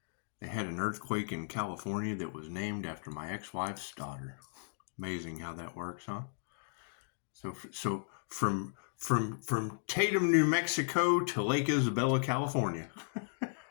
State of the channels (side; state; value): right; silent; digital silence